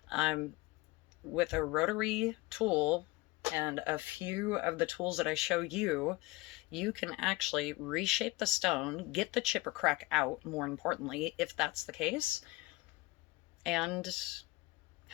With a rotary tool and a few of the tools that I show you, you can actually reshape the stone, get the chip or crack out, more importantly, if that's the case, and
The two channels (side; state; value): right; quieter; 21.6 dB